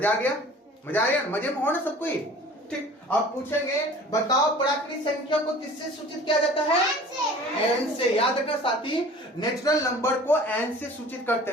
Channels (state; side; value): normal; both; correlation 0.45